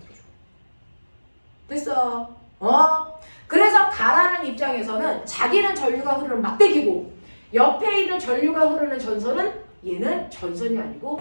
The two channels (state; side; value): inverted; both; correlation -1.00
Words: 됐어? 그래서 가라는 입장에서는 자기는 전류가 흐르는 막대기고 옆에 있는 전류가 흐르는 전선은 얘는 전선이